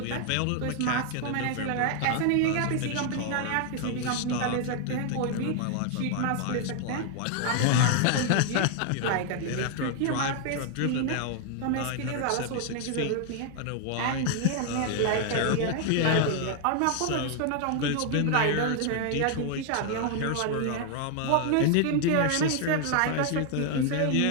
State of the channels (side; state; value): both; different; correlation 0.00